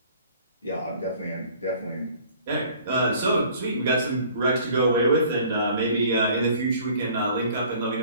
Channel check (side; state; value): both; inverted; correlation -0.53